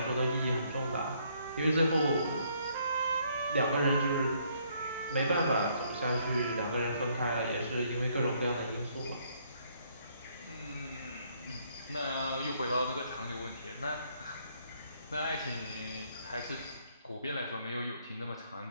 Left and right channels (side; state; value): both; inverted; correlation -0.68